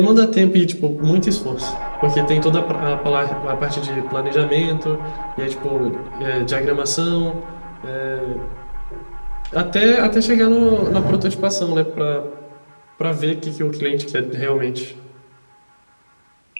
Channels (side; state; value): both; inverted; correlation -1.00